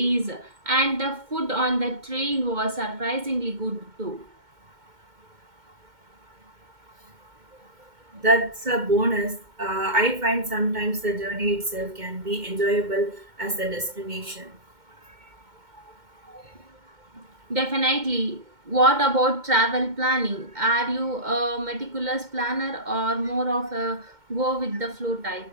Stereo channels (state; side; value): late; left; 2.1 ms